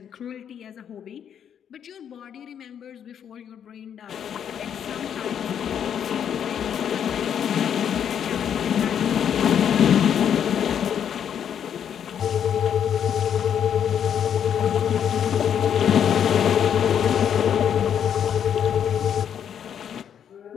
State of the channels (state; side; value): quieter; right; 8.7 dB